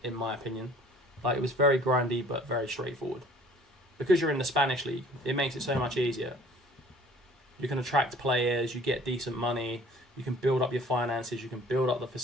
my opinion. Like, it was very grindy, but very straightforward. Because you're in the Spanish league, it makes it so much easier. You can attract players, you get decent money, you can build up your finances, you can build up the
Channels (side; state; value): both; normal; correlation 0.52